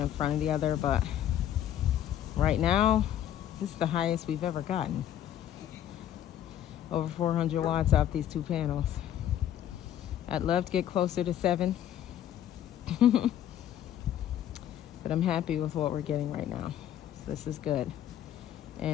front of the other, but right now this is the highest we've ever gotten. Over 400 watts off these 2 panels. I'd love to get closer to 7. But I'm happy with what we're getting right now. So this is good.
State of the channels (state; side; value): quieter; right; 10.9 dB